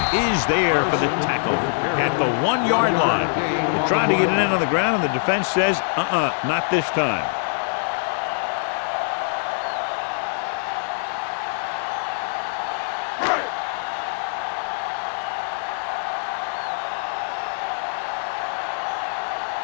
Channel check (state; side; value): silent; right; digital silence